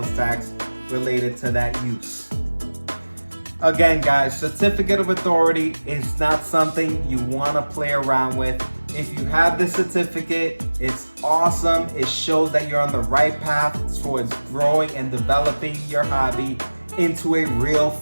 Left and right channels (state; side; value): inverted; both; correlation -1.00